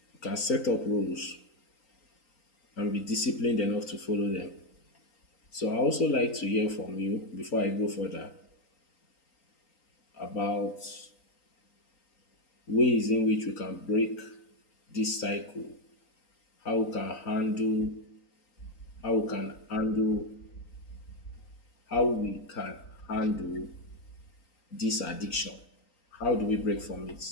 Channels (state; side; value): late; right; 3.9 ms